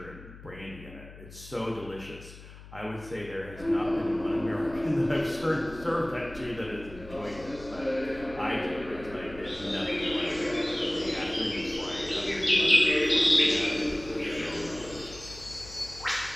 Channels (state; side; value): noise; left; hum, 17 dB below the sound